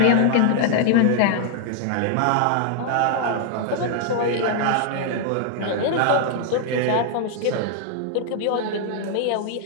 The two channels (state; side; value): different; both; correlation 0.00